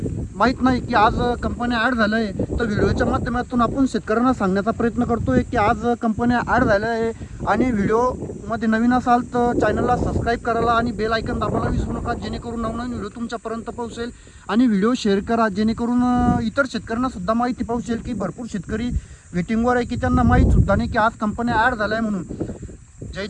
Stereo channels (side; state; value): both; identical; correlation 1.00